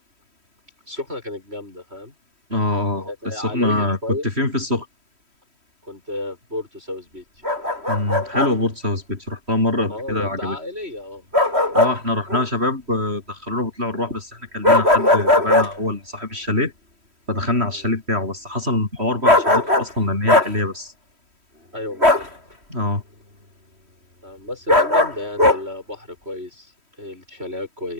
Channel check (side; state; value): left; late; 3.1 ms